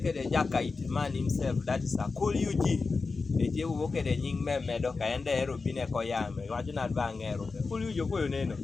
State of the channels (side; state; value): right; quieter; 4.3 dB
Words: the Jakite man himself. That is a cool UG. Eje uwoke de nying medo ka ende ero bine ko yame wacho na bangero kuli ujo koyo neno